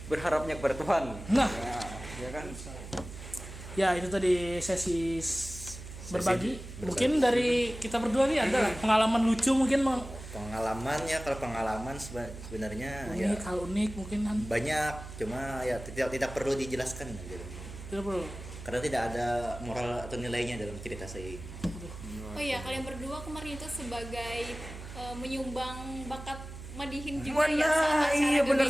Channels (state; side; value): noise; right; hum, 12 dB below the sound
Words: berharapnya kepada Tuhan. Nah, Ya kan? ya itu tadi sesi berbagi. Mungkin dari kita berdua nih ada pengalaman lucu mungkin Pengalamannya, kalau pengalaman sebenarnya ya unik mungkin kan. banyak, cuma ya tidak perlu dijelaskan gitu. Tidak perlu. Karena tidak ada moral atau nilainya dalam cerita saya ini. Oh iya, kalian berdua kemarin itu sebagai menyumbang bakat Madihin juga ya saat acara iya benar